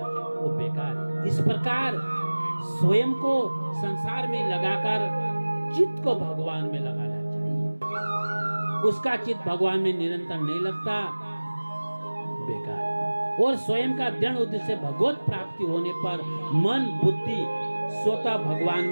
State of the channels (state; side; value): inverted; both; correlation -1.00